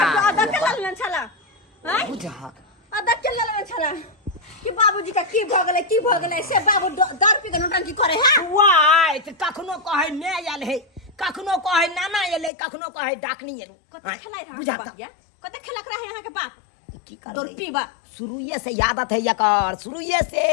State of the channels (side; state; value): right; drops out; at 12.5 s